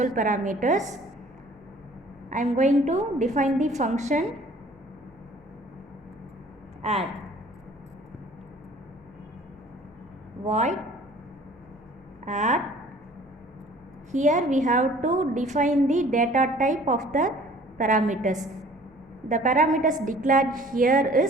parameters. I am going to define the function add. Void add. Here we have to define the data type of the parameters. The parameters declared here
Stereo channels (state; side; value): normal; both; correlation 0.51